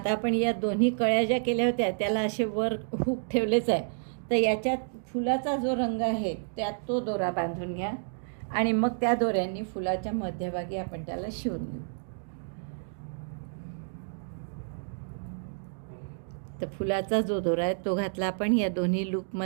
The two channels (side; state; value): left; silent; digital silence